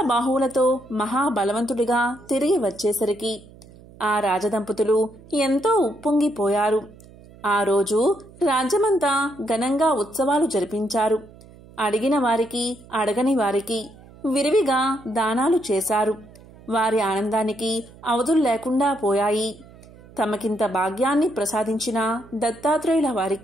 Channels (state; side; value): noise; right; hum, 22 dB below the sound